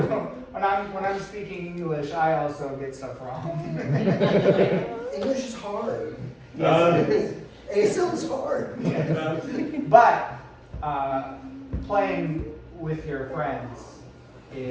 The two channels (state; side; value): identical; both; correlation 1.00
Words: when I'm speaking English, I also get stuff wrong. English is hard. Yes, ASL is hard. but playing with your friends